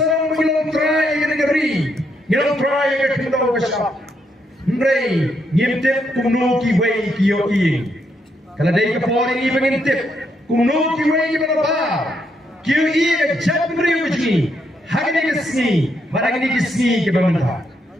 mengilang try ke negeri, mengilang try ke kendau ke siap. Ndrei ngintip kumno ki wei ki yo ing kala dei ka pori ni ngintip kumno ki wei ki baba ki yo ing jab mri uji hagni ki sni baragni ki sni ki bamanta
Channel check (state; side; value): normal; both; correlation 0.77